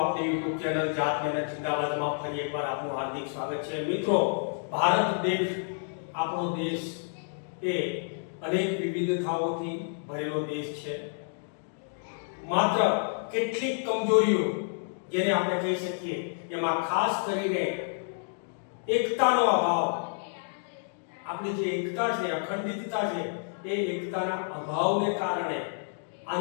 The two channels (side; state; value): right; silent; digital silence